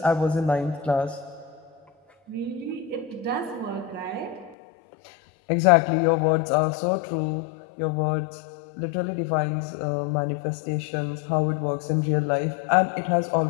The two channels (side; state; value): right; drops out; at 4.5 s